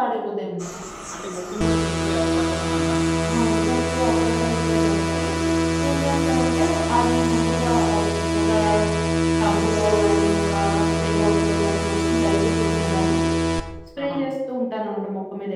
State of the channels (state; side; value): identical; both; correlation 1.00